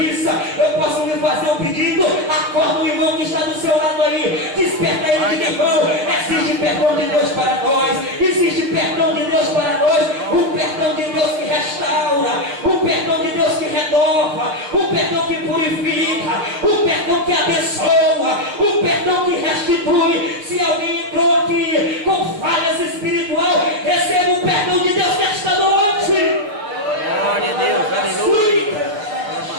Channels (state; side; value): late; left; 7.0 ms